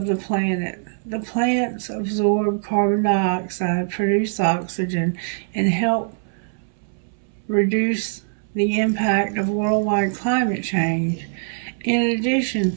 the planet. The plants absorb carbon dioxide, produce oxygen, and help reduce the impact of worldwide climate change. In addition,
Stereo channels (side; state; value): left; silent; 64 dB below the other